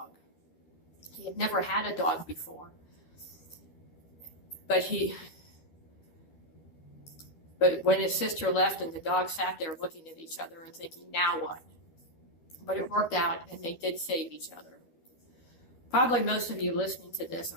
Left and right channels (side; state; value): right; late; 12 ms